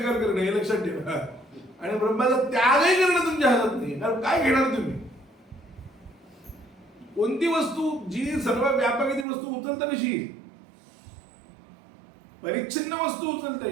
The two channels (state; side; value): drops out; left; at 9.2 s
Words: करणं, हे लक्षात ठेवा. आणि ब्रह्माचा त्यागही करणं तुमच्या हातात नाही. कारण काय घेणार तुम्ही, कोणती वस्तू जी सर्व व्यापक ती वस्तू उचलता कशी येईल, परिच्छिन्न वस्तू उचलता